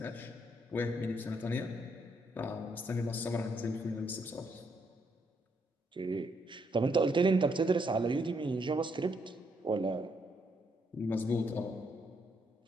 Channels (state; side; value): normal; both; correlation 0.74